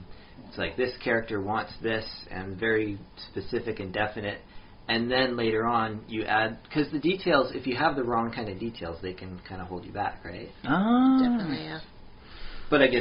it's like this character wants this, and very specific and definite. And then later on, you add, because the details, if you have the wrong kind of details, they can kind of hold you back, right? Definitely, yeah. But I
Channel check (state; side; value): identical; both; correlation 1.00